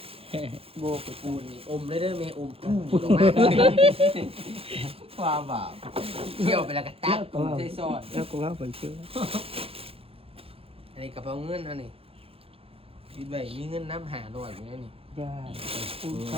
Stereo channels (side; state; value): left; late; 0.27 ms